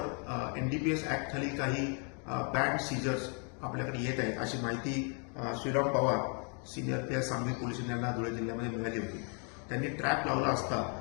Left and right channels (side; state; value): right; quieter; 39.1 dB